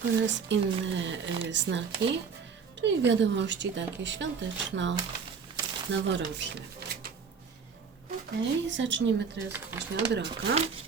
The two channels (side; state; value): left; quieter; 5.9 dB